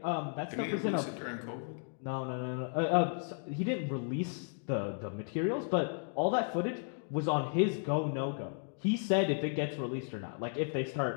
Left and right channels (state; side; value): silent; right; 55 dB below the other